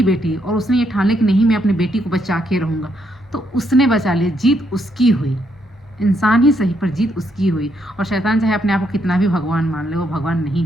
बेटी, और उसने ये ठान लिया कि नहीं मैं अपनी बेटी को बचा के रहूँगा, तो उसने बचा लिया, जीत उसकी हुई, इंसान ही सही पर जीत उसकी हुई। और शैतान चाहे अपने आप को कितना भी भगवान मान ले, वो भगवान नहीं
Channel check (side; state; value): both; normal; correlation 0.75